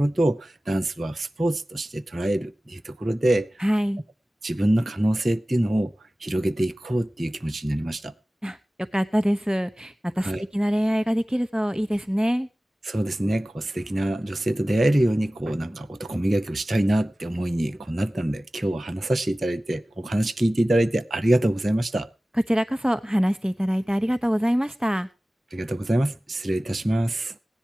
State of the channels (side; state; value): both; normal; correlation 0.97